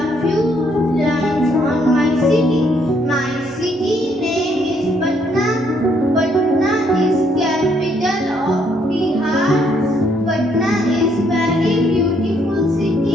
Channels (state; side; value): normal; both; correlation 0.70